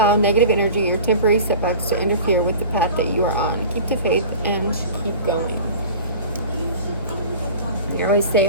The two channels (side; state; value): both; inverted; correlation -0.39